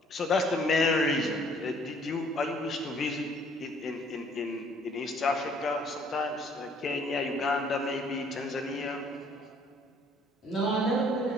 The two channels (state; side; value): normal; both; correlation 0.60